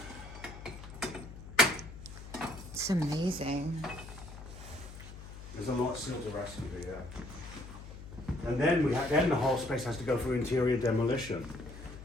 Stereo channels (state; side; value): noise; left; hum, 13 dB below the sound